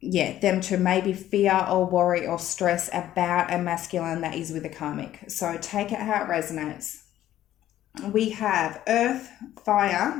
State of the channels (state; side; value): quieter; right; 12.8 dB